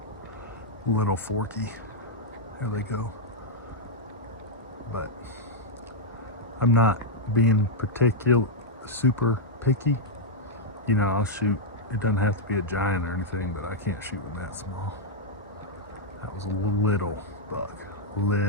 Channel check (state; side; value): normal; both; correlation -0.04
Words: little forky. There they go. But I'm not being super picky. You know, I'll shoot. It doesn't have to be a giant or anything, but I can't shoot one that small. That was a little buck.